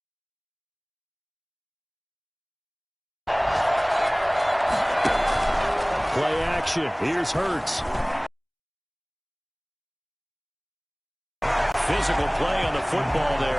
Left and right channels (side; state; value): both; identical; correlation 1.00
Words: Play action. Here's Hurts. Physical play on the football